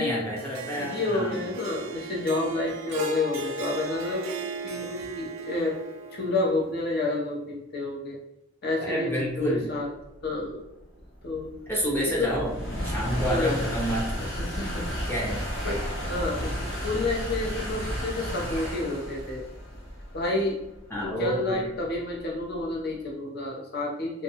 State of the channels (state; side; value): normal; both; correlation 0.41